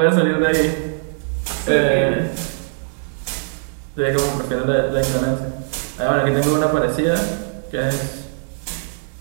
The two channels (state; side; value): silent; left; digital silence